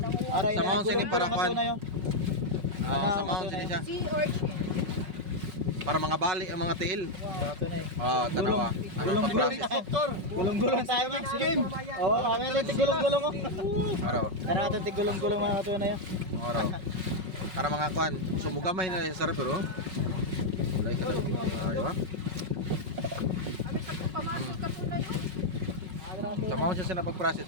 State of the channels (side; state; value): left; late; 5.4 ms